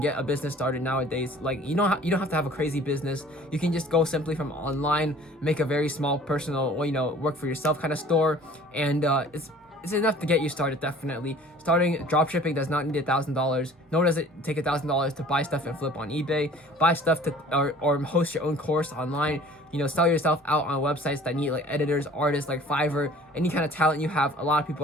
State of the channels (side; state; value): both; normal; correlation 0.49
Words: a business started nowadays. Like you don't have to have a crazy business. You can just go simply from online, make a very small personal, work for yourself kind of store, and it's enough to get you started. Definitely starting dropshipping does not need $1,000, nor does it take $1,000 to buy stuff and flip on eBay, buy stuff to or host your own course online. Sell yourself out on websites that need like editors, artists, like Fiverr. Any kind of talent you have, a lot of